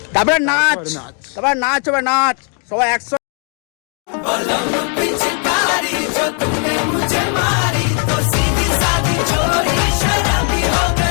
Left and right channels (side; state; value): right; quieter; 39.4 dB